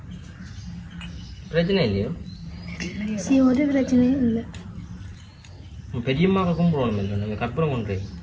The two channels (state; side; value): identical; both; correlation 1.00